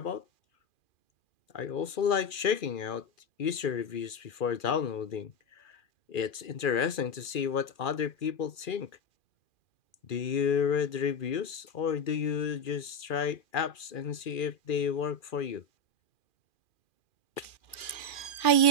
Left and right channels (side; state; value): right; late; 2.4 ms